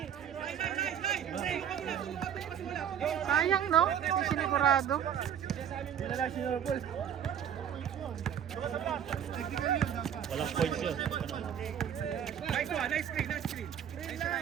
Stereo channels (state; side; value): quieter; left; 8.9 dB